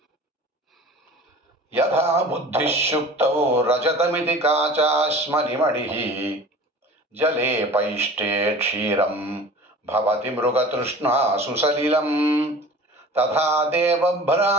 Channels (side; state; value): both; normal; correlation 0.41